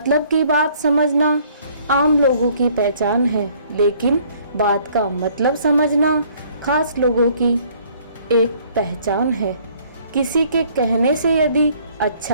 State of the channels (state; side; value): inverted; both; correlation -0.60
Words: की बात समझना आम लोगों की पहचान है, लेकिन बात का मतलब समझना खास लोगों की एक पहचान है। किसी के कहने से यदि